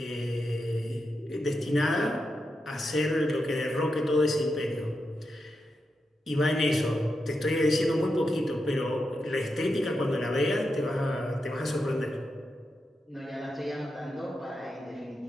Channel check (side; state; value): both; normal; correlation 0.87